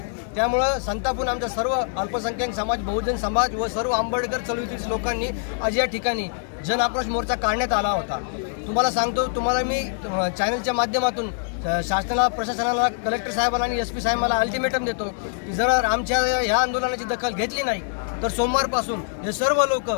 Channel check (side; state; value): right; silent; 62 dB below the other